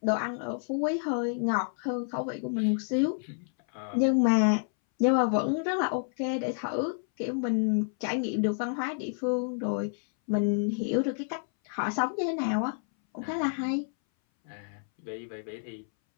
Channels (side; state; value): right; silent; 58 dB below the other